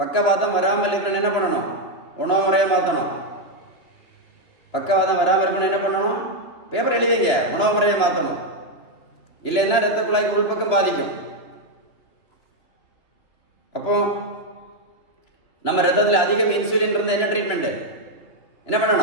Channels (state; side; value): late; right; 3.0 ms